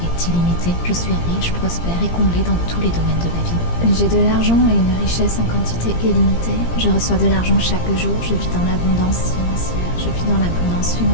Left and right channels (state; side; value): late; right; 17 ms